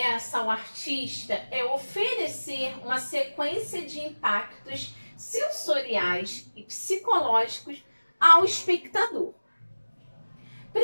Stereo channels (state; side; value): inverted; both; correlation -1.00